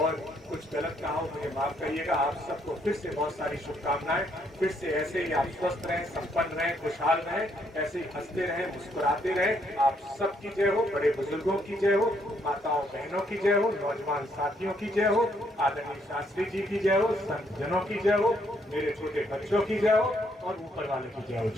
कुछ गलत कहा हो मुझे माफ करिएगा। आप सबको फिर से बहुत सारी शुभकामनाएं। फिर से ऐसे ही आप स्वस्थ रहें, संपन्न रहें, खुशहाल रहें, ऐसे ही हंसते रहें, मुस्कुराते रहें। आप सबकी जय हो, बड़े बुजुर्गों की जय हो, माताओं बहनों की जय हो, नौजवान साथियों की जय हो, आदरणीय शास्त्री जी की जय हो, संत जनों की जय हो, मेरे छोटे बच्चों की जय हो, और ऊपर वाले की जय हो।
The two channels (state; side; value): normal; both; correlation 0.72